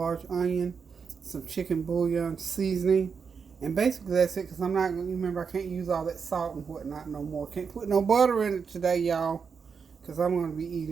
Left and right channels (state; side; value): quieter; left; 6.0 dB